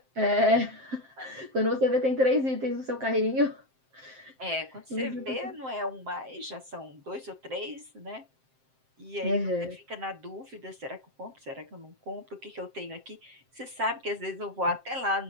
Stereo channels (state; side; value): late; left; 7.6 ms